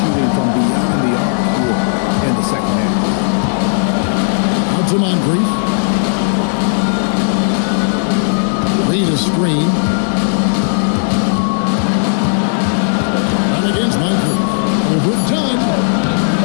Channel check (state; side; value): silent; right; digital silence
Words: from beyond the arc here in the second half? Out to Moncrief. Reed a screen. Run against Moncrief. Overdone.